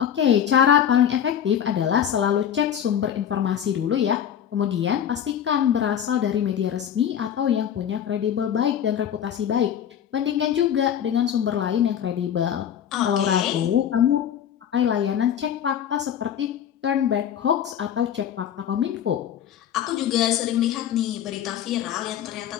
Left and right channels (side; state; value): right; quieter; 9.4 dB